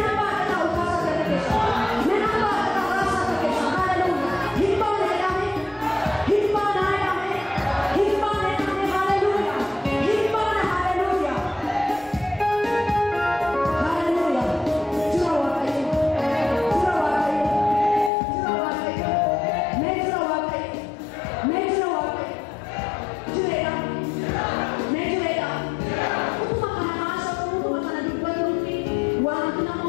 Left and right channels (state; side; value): drops out; right; at 18.1 s